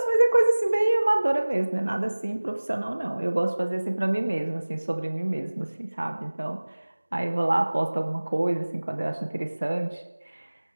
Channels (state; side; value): inverted; both; correlation -1.00